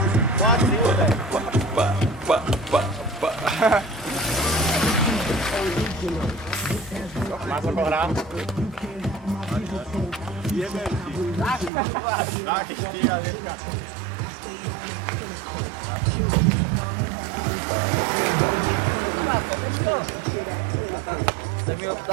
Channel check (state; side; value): drops out; left; at 11.7 s